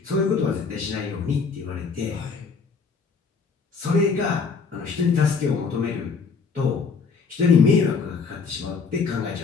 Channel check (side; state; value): right; quieter; 5.1 dB